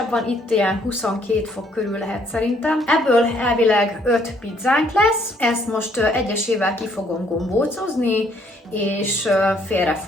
van, itt ilyen 22 fok körül lehet szerintem. Ebből elvileg 5 pizzánk lesz, ezt most egyesével ki fogom gombócozni, és félre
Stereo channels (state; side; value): normal; both; correlation 0.66